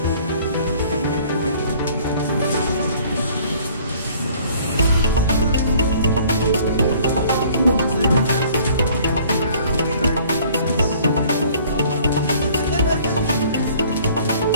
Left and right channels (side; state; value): both; inverted; correlation -0.55